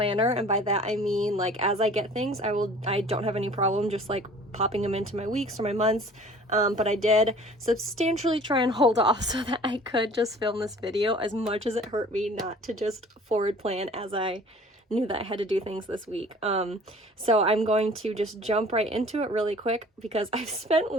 and by that I mean like as I get things, I don't have any problem just like popping them into my weeks or my months. But I did substantially try and hold off so that I could just film this video, as much as it hurt me not to just forward plan as I knew that I had to do things this week. So I'm going to just jump right into it really quick because I've spent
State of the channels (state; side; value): normal; both; correlation 0.49